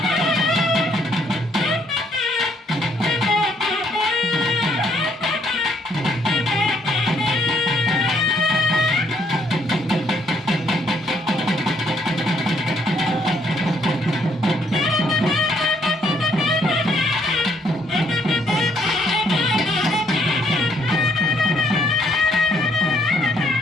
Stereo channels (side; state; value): both; normal; correlation 0.69